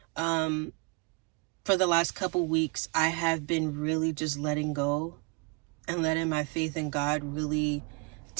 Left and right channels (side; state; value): left; quieter; 29.7 dB